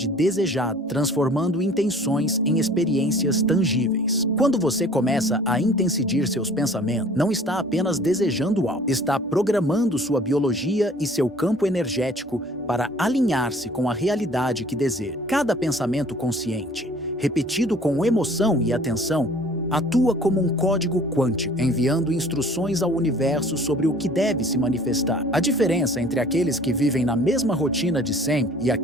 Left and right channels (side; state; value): both; normal; correlation 0.51